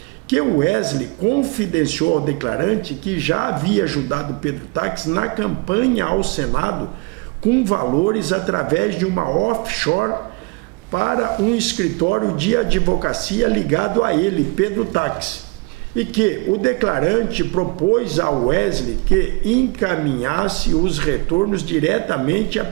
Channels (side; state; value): left; quieter; 28.5 dB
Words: que o Wesley confidenciou ao declarante que já havia ajudado Pedro Táxi na campanha ao Senado com valores através de uma offshore para um escritório de advocacia ligado a ele, Pedro Táxi, e que o declarante propôs ao Wesley que encaminhasse os retornos diretamente a